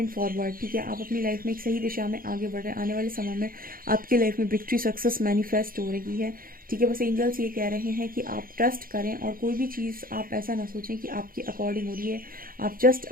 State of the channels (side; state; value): left; late; 0.42 ms